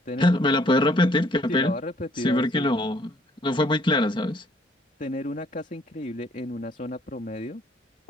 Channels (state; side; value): normal; both; correlation 0.63